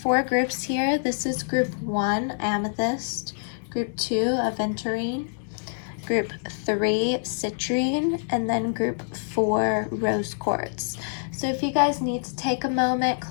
groups here. This is group 1, Amethyst. Group 2, Aventurine, Group 3, Citrine, and then Group 4, Rose Quartz. So if you guys need to take a moment,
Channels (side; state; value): right; silent; 61 dB below the other